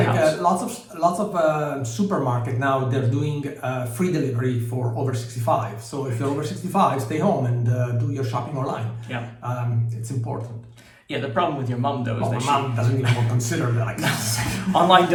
lots of supermarket now, they're doing free delivery for over 65. So if you're over 65, stay home and do your shopping online. Yeah. It's important. Yeah, the problem with your mom though is that my mom doesn't even consider that. Online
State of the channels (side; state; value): both; identical; correlation 1.00